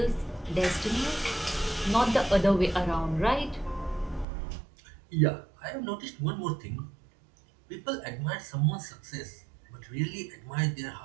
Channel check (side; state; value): left; drops out; at 4.2 s